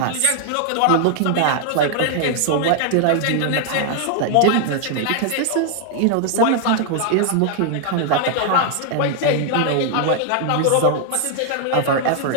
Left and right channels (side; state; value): both; different; correlation 0.00